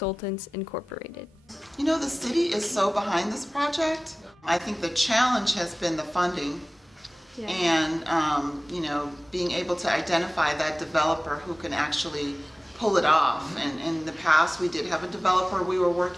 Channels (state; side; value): normal; both; correlation 0.98